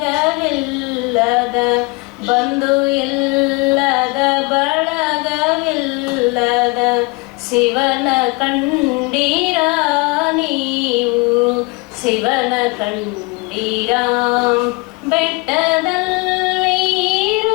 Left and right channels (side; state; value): right; quieter; 26.2 dB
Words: ಬಂಧು ಇಲ್ಲದ ಬಳಗವಿಲ್ಲದ ಶಿವನ ಕಂಡಿರ ನೀವು ಶಿವನ ಕಂಡಿರ ಬೆಟ್ಟದಲ್ಲಿ